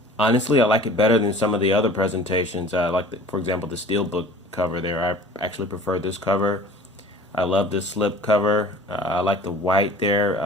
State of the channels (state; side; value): normal; both; correlation 0.46